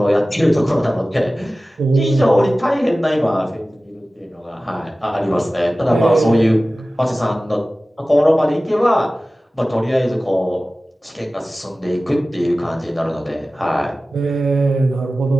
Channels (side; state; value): both; normal; correlation 0.96